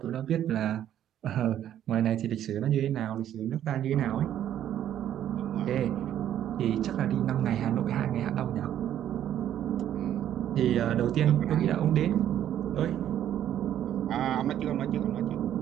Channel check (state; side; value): quieter; left; 11.0 dB